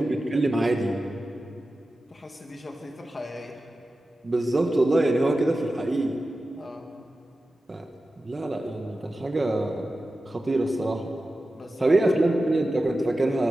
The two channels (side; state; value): both; normal; correlation 0.94